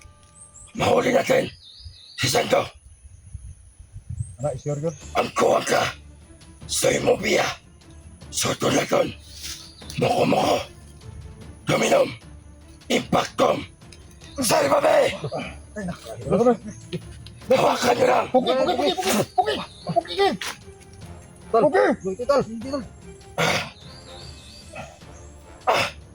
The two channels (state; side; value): identical; both; correlation 1.00